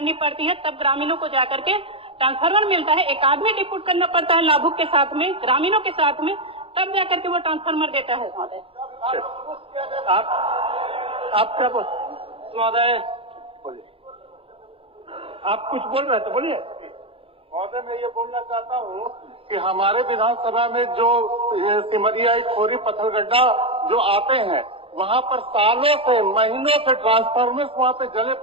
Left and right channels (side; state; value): left; late; 0.27 ms